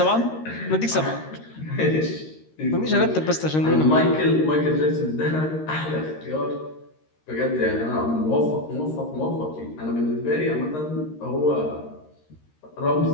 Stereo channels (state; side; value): late; right; 13 ms